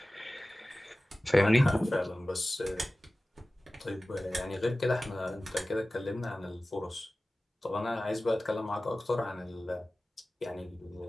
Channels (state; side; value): normal; both; correlation 0.97